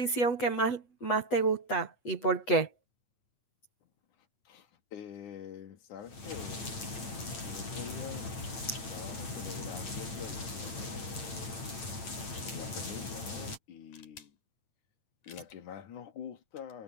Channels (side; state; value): right; late; 8.8 ms